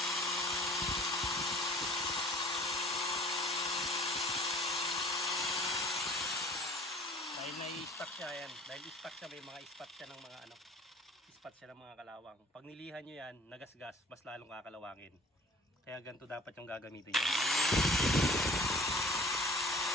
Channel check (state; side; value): normal; both; correlation 0.48